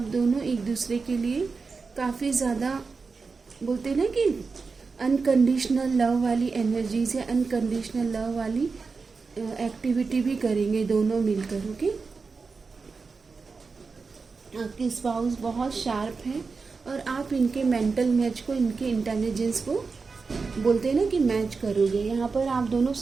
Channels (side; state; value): left; quieter; 4.6 dB